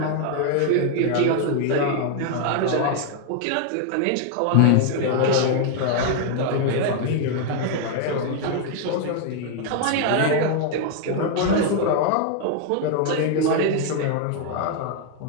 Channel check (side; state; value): both; different; correlation 0.00